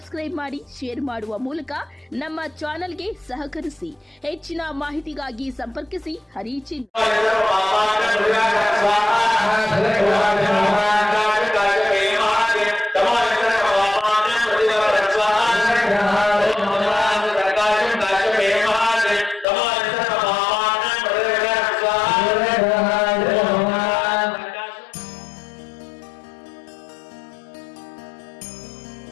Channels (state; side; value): drops out; right; at 19.5 s